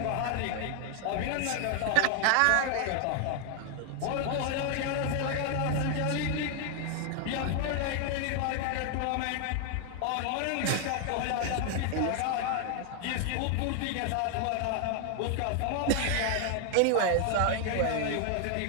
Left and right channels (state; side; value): different; both; correlation 0.00